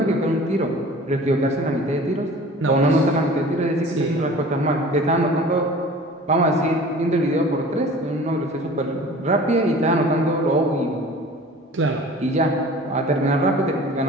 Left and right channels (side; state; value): both; normal; correlation 0.43